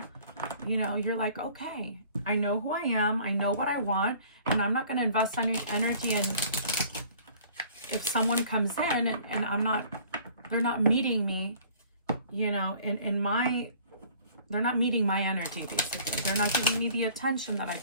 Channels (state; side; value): inverted; both; correlation -0.52